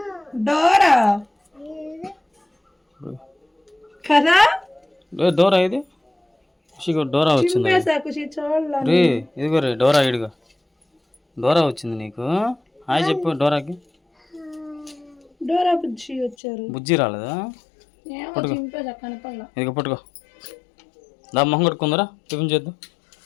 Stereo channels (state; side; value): drops out; right; at 16.4 s